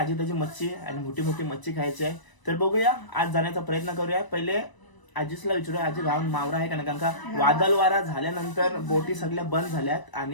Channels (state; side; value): late; right; 1.0 ms